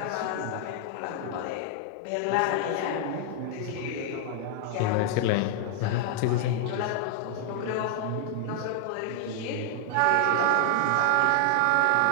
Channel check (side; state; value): both; different; correlation 0.00